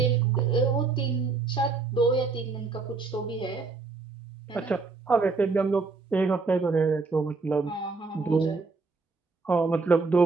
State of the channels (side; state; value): left; quieter; 4.3 dB